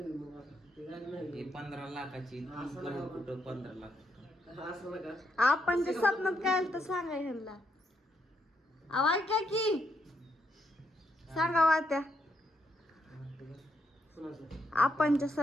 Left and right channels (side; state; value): both; normal; correlation 0.78